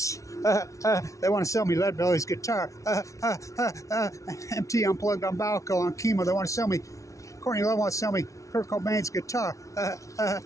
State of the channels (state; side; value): late; right; 0.15 ms